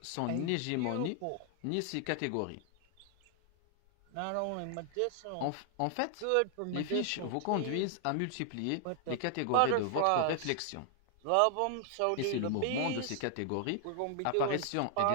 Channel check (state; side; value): different; both; correlation 0.00